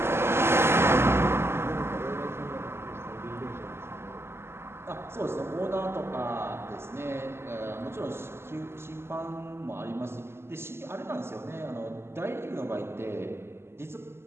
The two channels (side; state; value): left; late; 0.12 ms